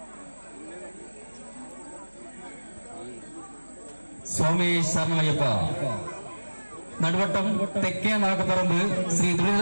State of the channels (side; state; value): both; inverted; correlation -1.00